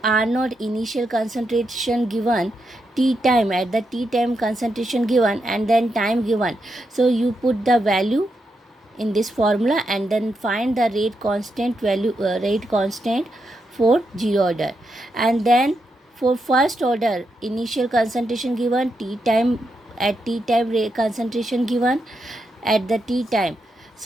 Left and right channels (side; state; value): both; normal; correlation 0.84